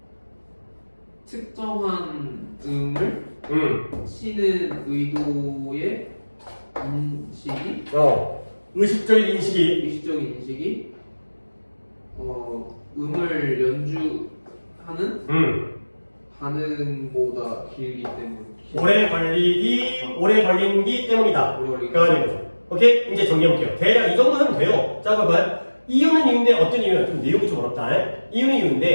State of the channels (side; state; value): both; inverted; correlation -1.00